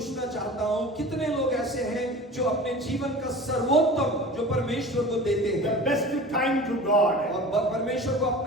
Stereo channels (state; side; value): normal; both; correlation 0.38